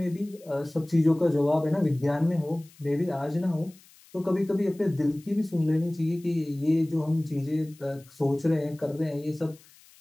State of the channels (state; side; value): noise; left; hiss, 26 dB below the sound